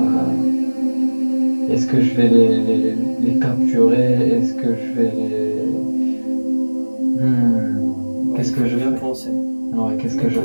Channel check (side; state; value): both; inverted; correlation -1.00